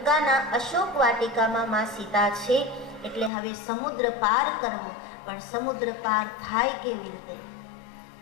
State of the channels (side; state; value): right; drops out; at 3.3 s